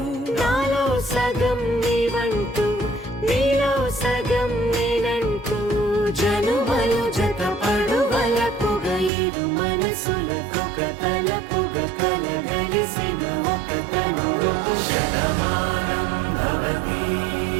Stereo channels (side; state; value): left; drops out; at 9.1 s